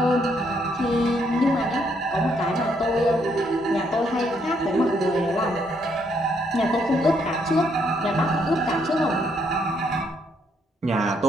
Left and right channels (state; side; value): normal; both; correlation 0.72